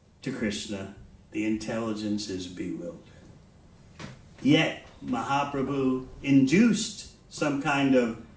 to Krishna, the intelligence is bewildered. Yet, Mahaprabhu induced some kind of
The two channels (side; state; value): both; identical; correlation 1.00